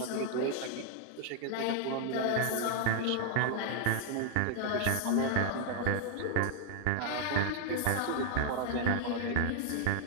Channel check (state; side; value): different; both; correlation 0.00